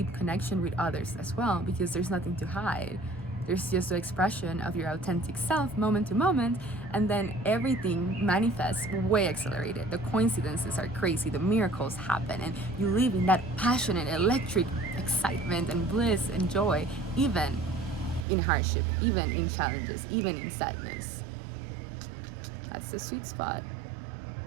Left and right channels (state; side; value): drops out; left; at 18.2 s